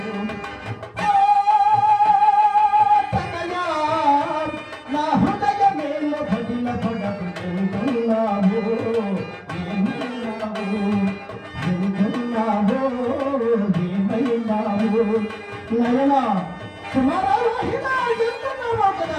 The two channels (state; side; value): identical; both; correlation 1.00